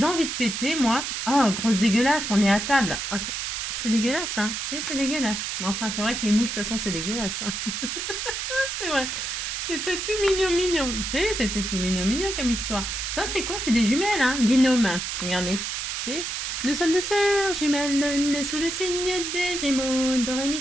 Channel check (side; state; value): right; noise; hiss, 3 dB below the sound